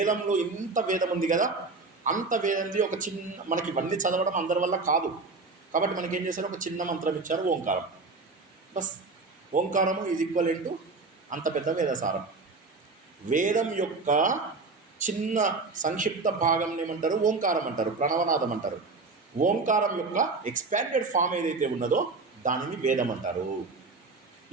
ఇంత వేదం ఉంది కదా, అంత వేదంది ఒక మనకి ఇవన్నీ చదవడం అందరి వల్ల కాదు. కాబట్టి మనకి ఏం చేశారు? ఒక చిన్న మంత్రం ఇచ్చారు, ఓంకారం. బస్, ఓంకారము ఈజ్ ఈక్వల్ టు అంత పెద్ద వేదసారం. వేదం యొక్క చిన్న సంక్షిప్త భాగం ఏమంటారు? ఓంకారం అంటారు, ప్రణవనాదం అంటారు. ఓంకారం యొక్క ఎక్స్పాండెడ్ ఫామ్ ఏదైతే ఉన్నదో దానిని వేదం అంటారు.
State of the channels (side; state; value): left; quieter; 3.9 dB